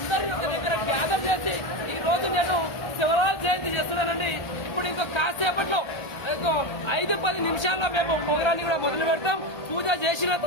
ఒక దగ్గర గ్యాదర్ చేసి ఈ రోజు నేను శివలాల్ జయంతి చేస్తున్నానండి. ఇప్పుడు ఇంకో కాసేపట్లో ఇంకో 5-10 నిమిషాల్లో మేము ప్రోగ్రాన్ని కూడా మొదలు పెడతాం. పూజ చేసిన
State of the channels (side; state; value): right; late; 1.3 ms